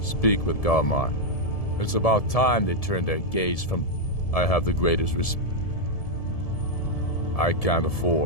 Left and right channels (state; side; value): late; right; 1.7 ms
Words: Speak with Galmar. It's about time they turn their gaze from... I have the greatest respect. I can't